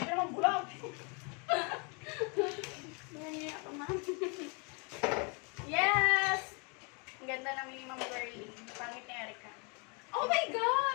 Dalawang bulag. Nangyayari ako, Ma'am. Yes! Ang ganda namin ni Ma'am Girlie. Pangit ni Erica. Oh my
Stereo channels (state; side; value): quieter; right; 33.8 dB